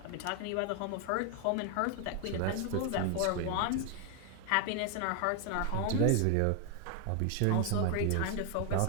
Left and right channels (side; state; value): both; different; correlation 0.01